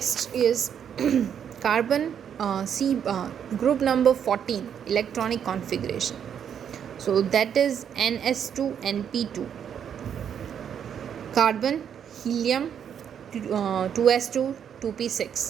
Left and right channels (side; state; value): left; quieter; 8.4 dB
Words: is carbon C group number 14, electronic configuration. So that is NS2 NP2. Carbon, helium, 2s2